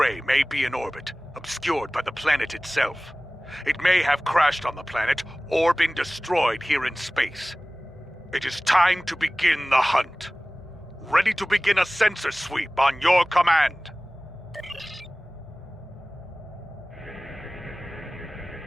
may be in orbit, obscured by the planet itself. It may have crashed on the planet or been destroyed here in space. It is time to begin the hunt. Ready to begin a sensor sweep on your command.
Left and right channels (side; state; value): both; normal; correlation 0.98